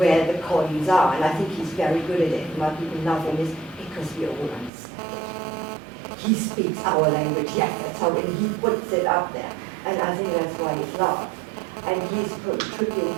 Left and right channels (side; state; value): left; drops out; at 4.7 s